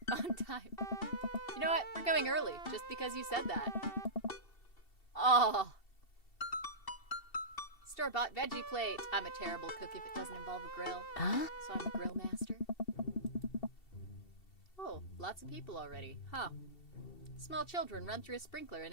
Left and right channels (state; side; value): late; right; 2.7 ms